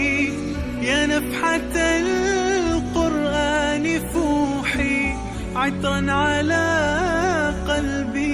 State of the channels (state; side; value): identical; both; correlation 1.00